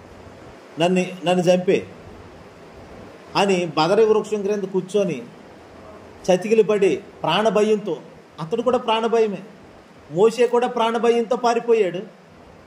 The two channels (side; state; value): both; identical; correlation 1.00